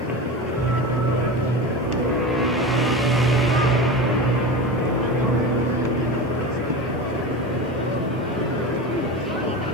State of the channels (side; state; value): both; normal; correlation 0.26